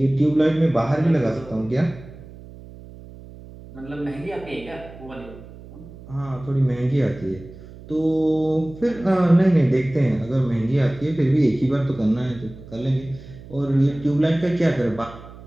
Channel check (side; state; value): right; noise; hum, 17 dB below the sound